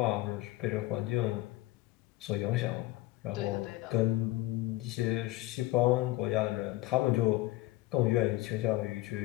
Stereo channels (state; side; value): quieter; right; 17.9 dB